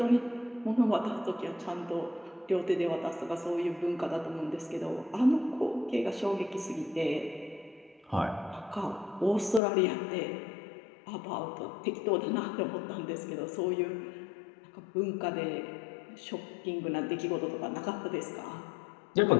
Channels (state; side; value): drops out; right; at 9.6 s